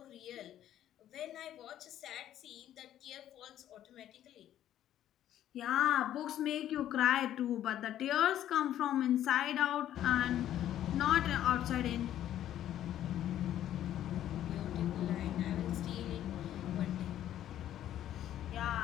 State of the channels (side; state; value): right; quieter; 11.7 dB